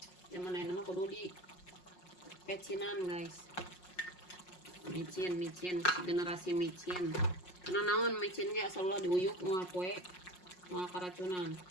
Zaman nama kudu di pecinan guys. Micin generasi micin. Karena naon micin ge asal ulah diuyuk moal poe moal karacunan.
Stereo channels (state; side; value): late; right; 5.5 ms